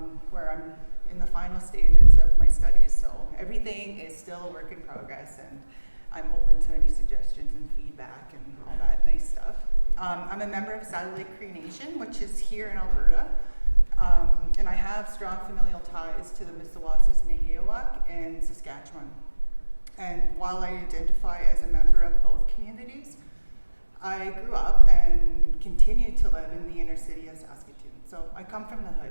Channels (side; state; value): both; inverted; correlation -1.00